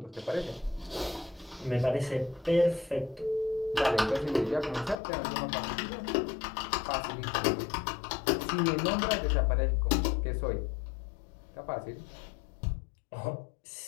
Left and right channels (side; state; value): right; drops out; at 5.0 s